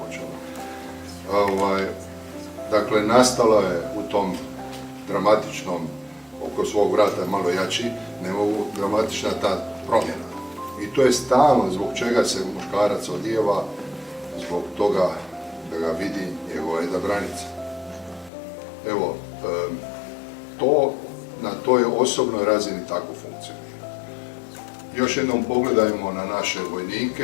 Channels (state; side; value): drops out; right; at 18.3 s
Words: počelo. Dakle, nastalo je u tom dramatičnom, oko svog vrata malo jači, dramatična ta promjena. I to je stalno zbog čega se muškarac odijeva, zbog toga da ga vidi njegova jedna granica. Evo, to na toj osobnoj razini tako funkcionira. Još jednom pogledajmo na naše